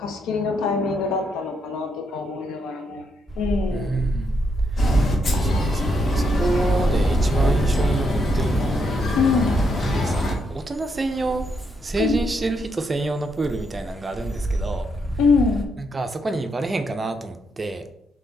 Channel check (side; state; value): both; normal; correlation 0.78